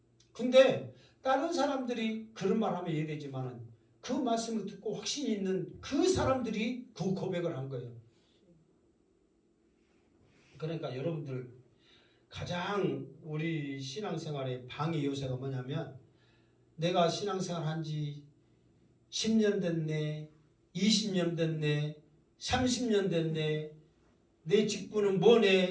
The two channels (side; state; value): both; identical; correlation 1.00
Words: 근데 다른 사람들이 그런 말 하면 이해되지만은 그 말씀을 듣고 확신이 있는 그 사람들이 그 고백을 한 거예요. 그러니까 여러분들 가장 우리 신앙생활의 방해 요소가 뭐냐면 내가 신앙생활 한 지 10년 됐네, 20년 됐네, 30년 됐네, 내 직분은